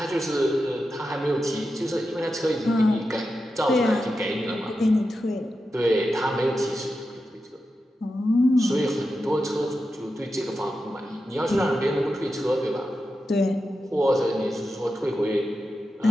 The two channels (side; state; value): both; normal; correlation 0.90